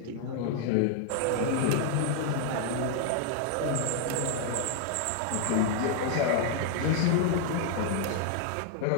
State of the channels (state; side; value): different; both; correlation -0.01